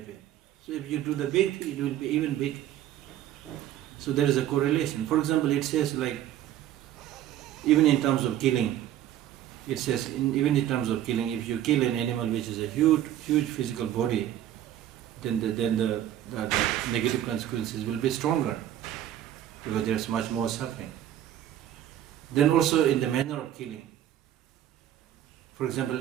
So if you do the big thing, it will be even big. So there is a correlation. For example, it says like, even in terms of killing, it says even in terms of killing, if you kill an animal which is a huge physical body, then the negative consequences will be stronger because there is much more suffering. Then also in the manner of killing. For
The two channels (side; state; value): left; quieter; 11.9 dB